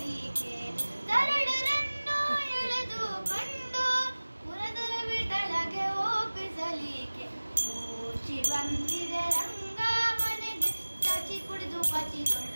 ತರಳರನ್ನು ಎಳೆದುಕೊಂಡು ಪುರಂದರ ವಿಠಲಗೆ ಒಪ್ಪಿಸಲಿಕ್ಕೆ ಊಚಿ ಬಂದಿದೆ ರಂಗ ಮನೆಗೆ ಚಾಚಿ ಕುಡಿದು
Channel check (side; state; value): both; inverted; correlation -1.00